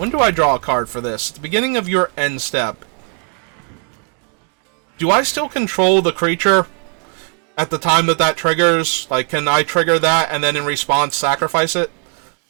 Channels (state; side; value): quieter; left; 39.1 dB